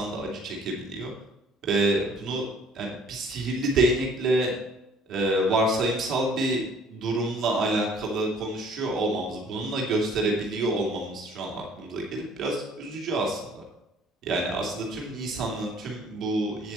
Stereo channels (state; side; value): normal; both; correlation 0.56